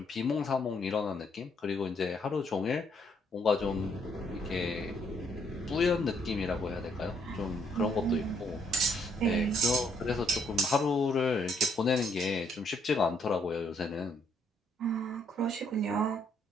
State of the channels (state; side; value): normal; both; correlation 0.70